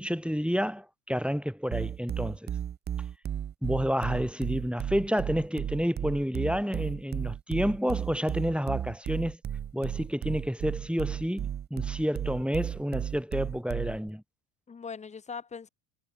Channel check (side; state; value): both; normal; correlation 0.91